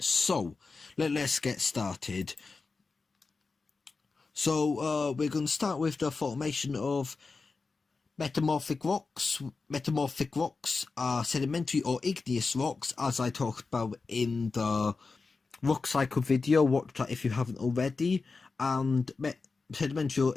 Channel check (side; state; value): right; quieter; 4.2 dB